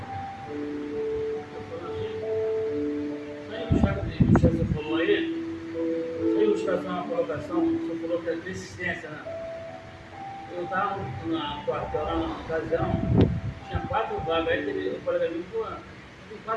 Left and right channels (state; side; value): identical; both; correlation 1.00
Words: Você falou aí, sem ilustração na colocação, você falou que é persistência, né? Eu estava na quartel, lá na ocasião, tinha 4 vagas, aí teve um colega meu que falou, tem